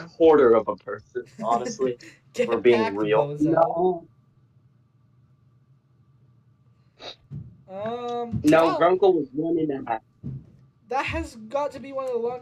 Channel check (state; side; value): identical; both; correlation 1.00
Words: quarter of a person, honestly. Get We're being back, real. bozo. No. Well, Grunkle was 1.5. that has got to be one of the